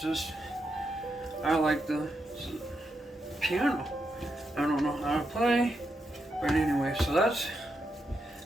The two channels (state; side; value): normal; both; correlation 0.83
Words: just, I like the piano. I don't know how to play, but anyway, so that's